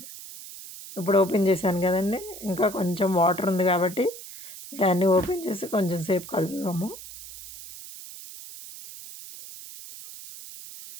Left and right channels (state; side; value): noise; right; hiss, 14 dB below the sound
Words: ఇప్పుడు ఓపెన్ చేశాను కదండి. ఇంకా కొంచెం వాటర్ ఉంది కాబట్టి దాన్ని ఓపెన్ చేసి కొంచెం సేపు కలుపుదాము.